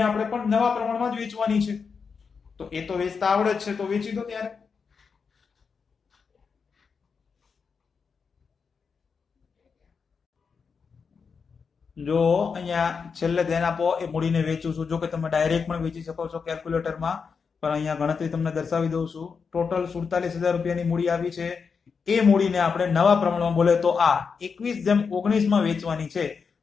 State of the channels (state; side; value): quieter; right; 5.6 dB